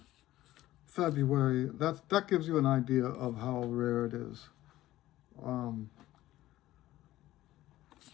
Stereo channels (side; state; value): right; quieter; 15.4 dB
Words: February. That gives you an idea of how rare it is.